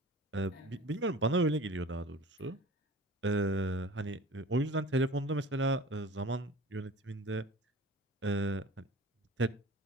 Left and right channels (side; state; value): both; normal; correlation 0.41